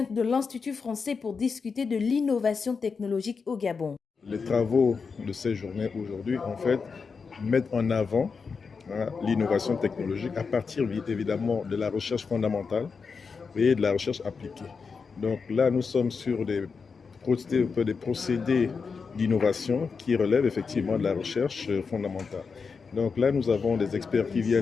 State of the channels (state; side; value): quieter; right; 5.2 dB